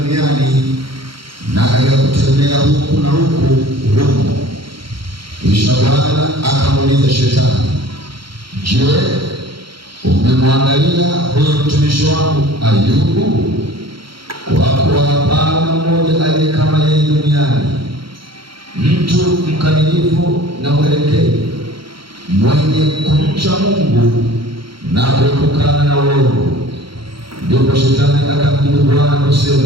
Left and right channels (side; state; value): left; late; 0.74 ms